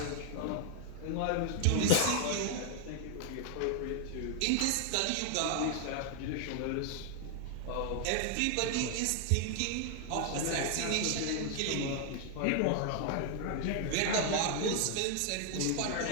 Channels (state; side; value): different; both; correlation 0.00